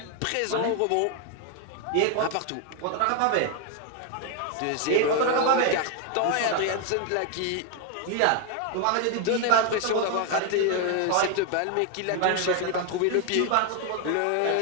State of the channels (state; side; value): different; both; correlation 0.01